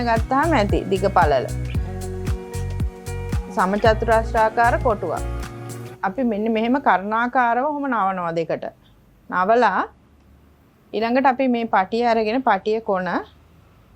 ගත්තාම ඇති දිග පළල. සමචතුරස්‍රාකාර කොටුවක්. අපි මෙන්න මෙහෙම කර්ණාකාරව ඔහොම නවනවා දෙකට. නවලා ඊළඟට අපි මේ පටිය අරගෙන පටිය කොන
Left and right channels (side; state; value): both; identical; correlation 1.00